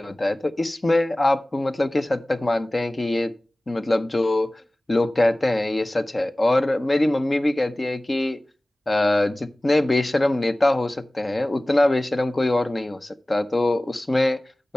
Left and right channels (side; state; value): both; normal; correlation 0.98